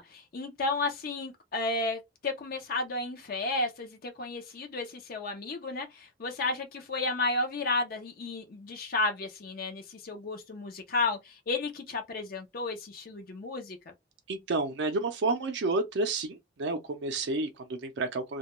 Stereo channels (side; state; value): both; normal; correlation -0.15